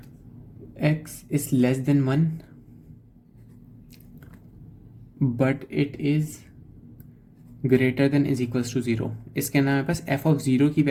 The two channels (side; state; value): both; identical; correlation 1.00